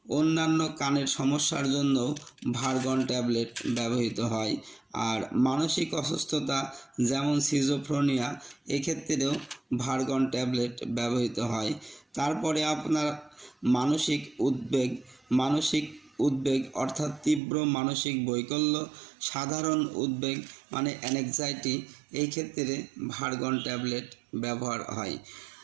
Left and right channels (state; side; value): drops out; left; at 17.4 s